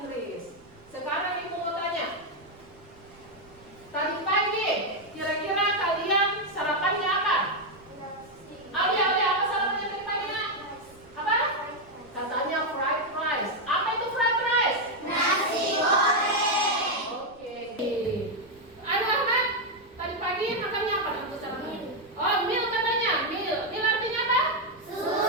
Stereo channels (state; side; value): noise; right; rumble, 28 dB below the sound